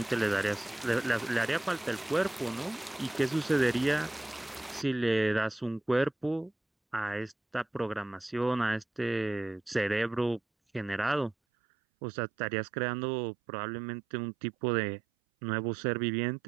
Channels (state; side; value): drops out; left; at 11.4 s